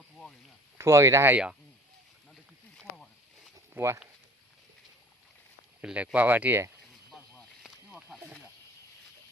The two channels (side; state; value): both; normal; correlation 0.48